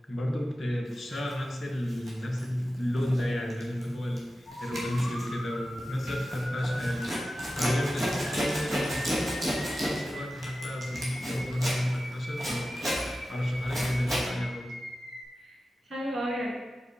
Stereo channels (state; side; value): normal; both; correlation 0.93